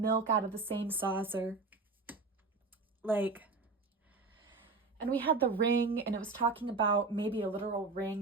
milk out of the same saucer. Like, and we had the ring, and it was talking about maybe a literal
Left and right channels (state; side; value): quieter; left; 3.9 dB